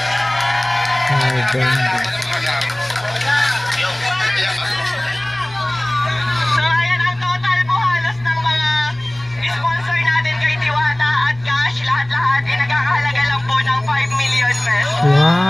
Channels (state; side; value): noise; left; hum, 25 dB below the sound